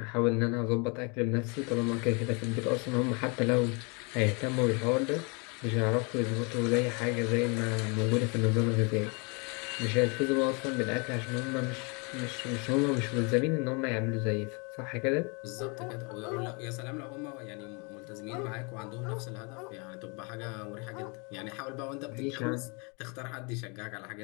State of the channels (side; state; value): right; quieter; 32.4 dB